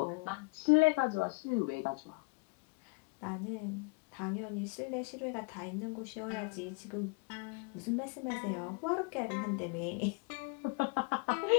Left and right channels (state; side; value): quieter; right; 30.2 dB